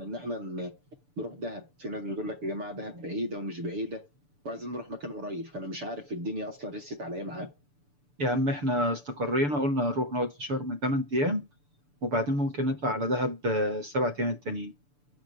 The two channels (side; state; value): left; late; 6.9 ms